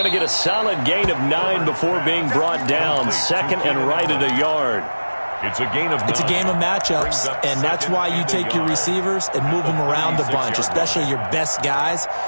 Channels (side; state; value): both; inverted; correlation -1.00